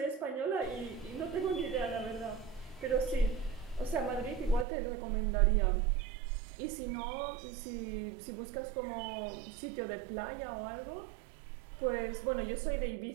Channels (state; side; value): drops out; left; at 4.7 s